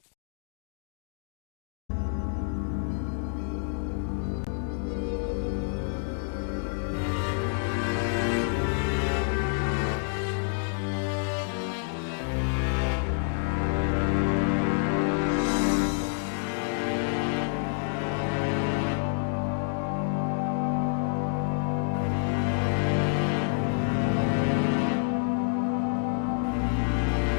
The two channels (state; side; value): silent; right; digital silence